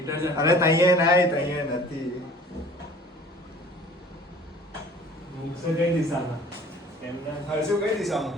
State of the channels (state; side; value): normal; both; correlation 0.48